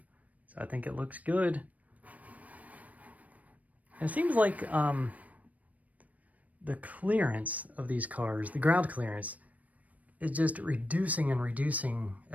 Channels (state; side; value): late; left; 0.071 ms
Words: so I think it looks good. It seems like the clearance of these cars, the ground clearance, is just reducing and reducing